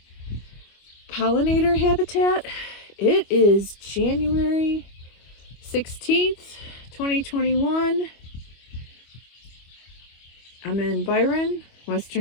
pollinator habitat. It is January 16th, 2021. I'm in Byron,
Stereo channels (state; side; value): late; right; 25 ms